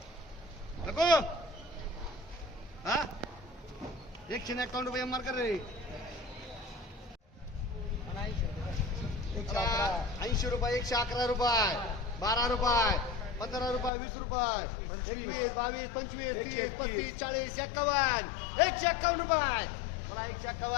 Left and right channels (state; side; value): drops out; right; at 13.9 s